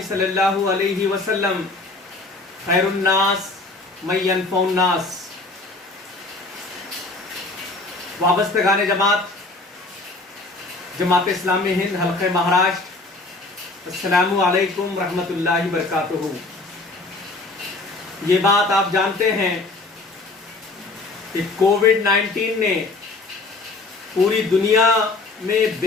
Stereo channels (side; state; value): right; quieter; 3.3 dB